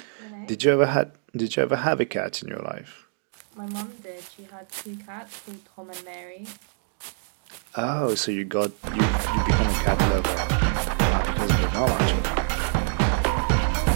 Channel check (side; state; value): left; silent; digital silence